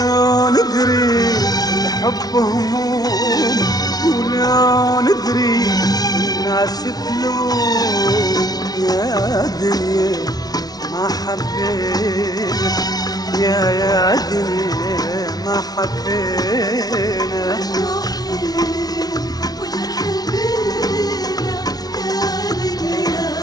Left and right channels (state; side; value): late; right; 0.19 ms